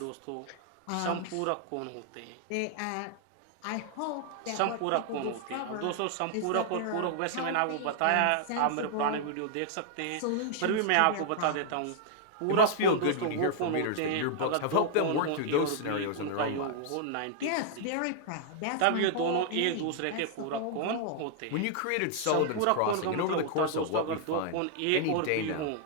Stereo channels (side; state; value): both; different; correlation -0.01